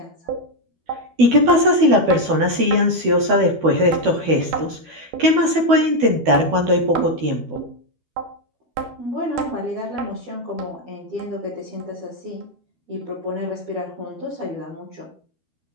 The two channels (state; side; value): late; left; 12 ms